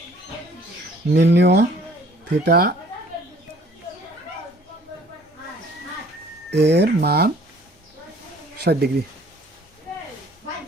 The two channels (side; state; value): both; normal; correlation 0.56